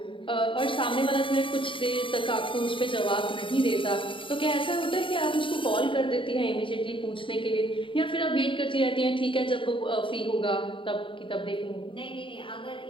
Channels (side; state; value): right; late; 0.25 ms